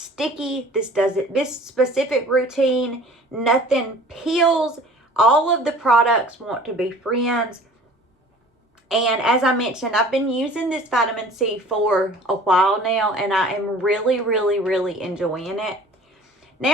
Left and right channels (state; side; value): normal; both; correlation 0.47